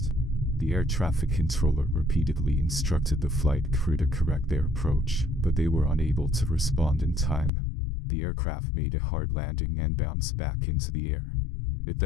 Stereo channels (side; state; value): right; drops out; at 7.5 s